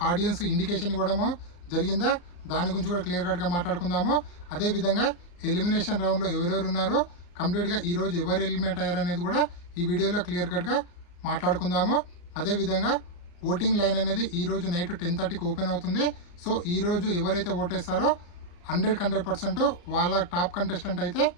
ఆడియన్స్ ఇండికేషన్ ఇవ్వడము జరిగిందా, దాని గురించి కూడా క్లియర్ కట్గా మాట్లాడుకుందాము. అదేవిధంగా ఎలిమినేషన్ రౌండ్లో ఎవరెవరు ఉన్నారో కంప్లీట్గా ఈరోజు ఎవరు ఎలిమినేట్ అయ్యారనేది కూడా ఈ వీడియోలో క్లియర్ కట్గా మాట్లాడుకుందాము. అదేవిధంగా ఓటింగ్ లైన్ అనేది ఈరోజు నైట్ 10:30కి ఓపెన్ అవుతుంది. సో ఈరోజు ఎవరైతే ఓటేస్తారో 100% వాళ్ళ టాప్ కంటెస్టెంట్ అయితే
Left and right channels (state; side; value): late; right; 34 ms